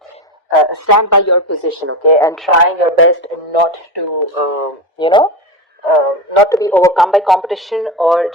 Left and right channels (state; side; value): normal; both; correlation 0.19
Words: stand by your position, okay, and trying your best not to not to be overcome by competition or